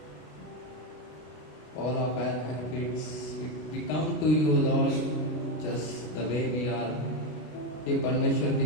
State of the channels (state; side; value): late; right; 33 ms